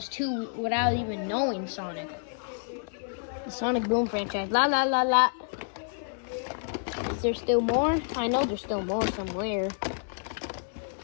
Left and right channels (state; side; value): silent; right; digital silence